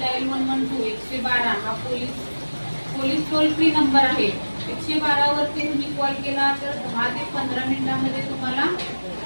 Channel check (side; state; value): both; inverted; correlation -1.00